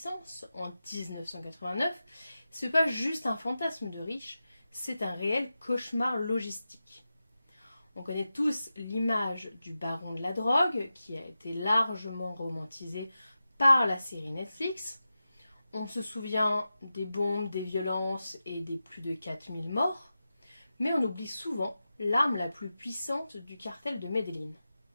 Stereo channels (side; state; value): both; inverted; correlation -0.92